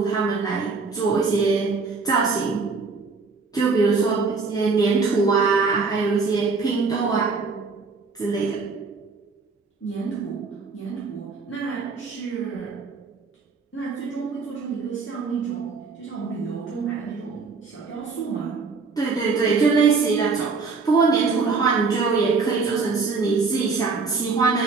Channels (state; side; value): quieter; left; 4.5 dB